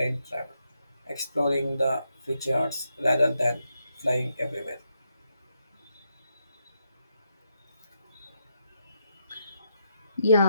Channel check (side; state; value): both; inverted; correlation -0.81